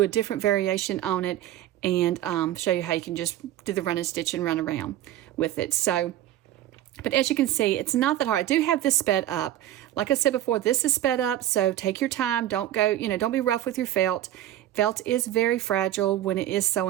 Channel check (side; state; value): left; quieter; 12.8 dB